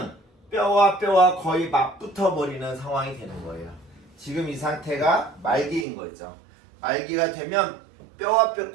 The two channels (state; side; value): drops out; left; at 5.9 s